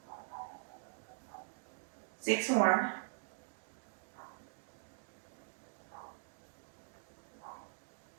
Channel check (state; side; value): silent; left; digital silence